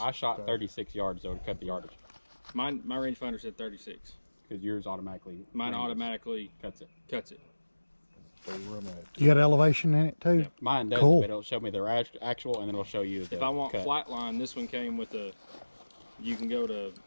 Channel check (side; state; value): both; inverted; correlation -1.00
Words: I shot 36 yards though to cut the yardage. My rangefinder said 36. Because yours automatically. Mine automatically cuts it. cuts it. You got elevation in it too? Yeah. Mine does, Cool. but it'll show me their actual, and then it'll show you the If I want cut. flat line, this one came with a, you can go to